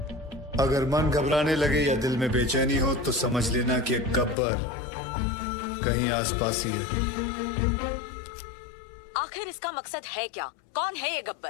अगर मन घबराने लगे या दिल में बेचैनी हो तो समझ लेना कि गब्बर कहीं आसपास ही है। आखिर इसका मकसद है क्या? कौन है ये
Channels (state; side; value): drops out; right; at 4.4 s